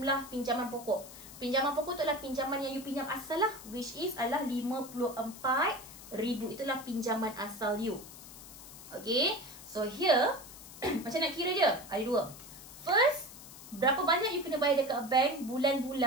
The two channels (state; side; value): noise; left; hiss, 16 dB below the sound